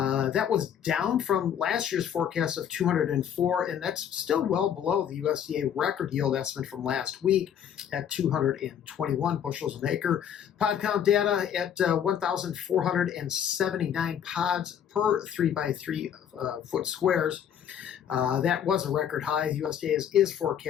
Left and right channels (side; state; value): right; quieter; 9.1 dB